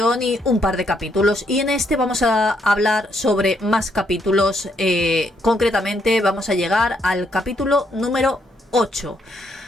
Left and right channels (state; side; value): normal; both; correlation 0.74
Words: y un par de capítulos, y en este vamos a hablar sobre más capítulos. Concretamente vamos a llegar al capítulo número 8,